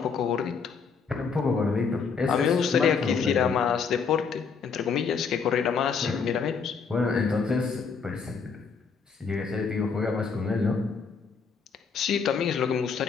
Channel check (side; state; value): right; quieter; 5.6 dB